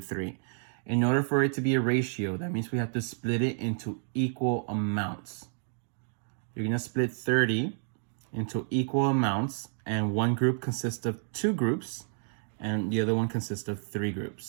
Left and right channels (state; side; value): silent; left; digital silence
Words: In order for it to be a ratio, that means we have to split it into equal amounts. You're going to split 30 into equal amounts, and one group consists of two groups, and the other one consists of three